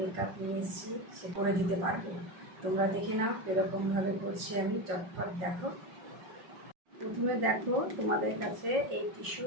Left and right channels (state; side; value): late; left; 5.5 ms